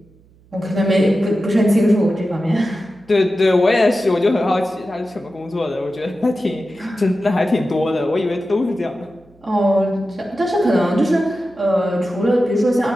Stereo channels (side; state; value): right; noise; hum, 29 dB below the sound